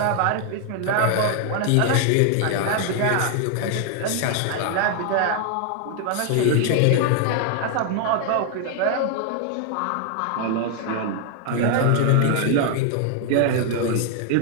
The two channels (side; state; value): both; different; correlation 0.00